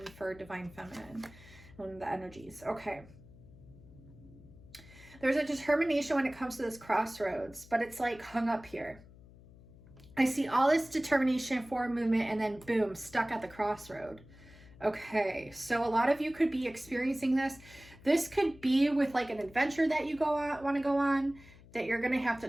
for divine feminine and the energies. Okay. There's a determination when it comes to this crossroads, but it's like hung up here. I see all this determination for movement, and then boom, stuck at the crossroad. Okay, so a lot of you could be experiencing this. This could be with like an adventure that you want to go on, that you're going to have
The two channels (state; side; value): noise; left; hum, 21 dB below the sound